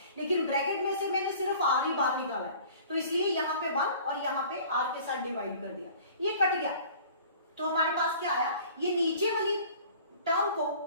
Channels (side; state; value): both; inverted; correlation -0.48